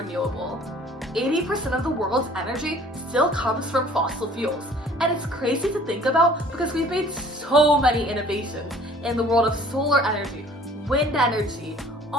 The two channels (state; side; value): normal; both; correlation 0.52